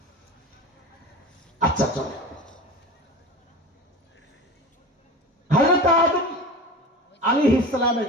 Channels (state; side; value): normal; both; correlation 0.32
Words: আচ্ছা চলে। হযরত আদম আলাইহিস সালামের